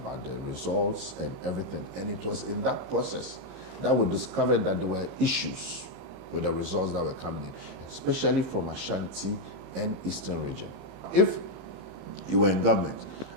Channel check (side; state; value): left; late; 15 ms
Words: the results and everything. And it was in that process that we discovered that there were issues with the results that were coming in, especially from Ashanti and Eastern region. If you were in government